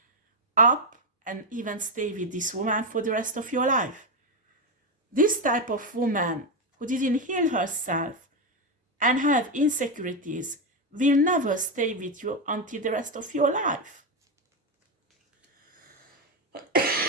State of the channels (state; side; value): normal; both; correlation 0.08